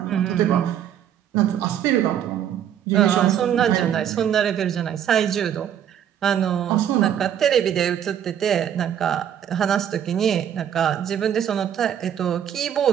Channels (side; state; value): left; quieter; 9.7 dB